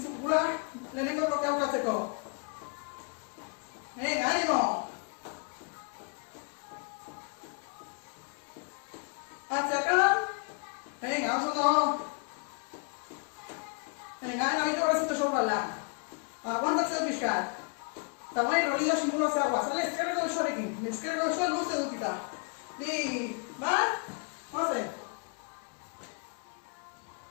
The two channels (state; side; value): quieter; right; 34.9 dB